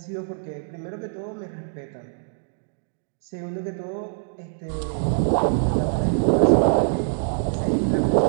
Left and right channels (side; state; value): left; silent; digital silence